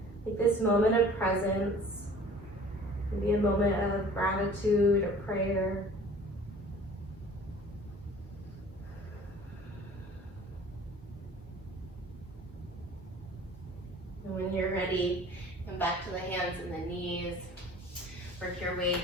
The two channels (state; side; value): normal; both; correlation 0.48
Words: like this moment of presence. Maybe a moment of gratitude or prayer. And when you're ready, come back to the hands and the knees. Work your way